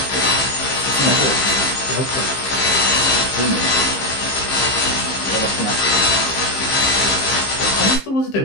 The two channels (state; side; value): late; right; 15 ms